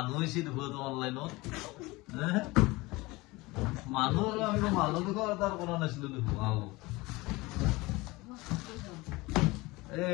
হৈছে দেখো তো অনলাইনত মানুহ আমি মানুহ দেখো তাৰ কৰা নাছিলো দেখো হাও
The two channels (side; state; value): right; quieter; 22.2 dB